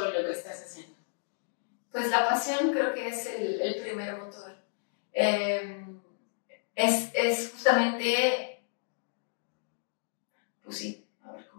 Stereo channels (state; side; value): silent; right; digital silence